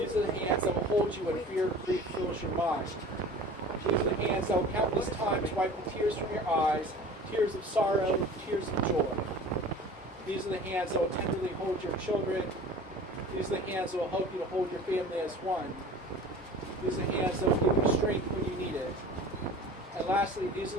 are the hands that will hold you when fear and grief fills your mind. These are the hands that will countless times wipe the tears from your eyes, tears of sorrow, tears of joy. These are the hands that will tenderly hold your children. These are the hands that will help you to hold your family as one. These are the hands that will give you strength when you need it. And lastly, these are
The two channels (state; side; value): normal; both; correlation 0.41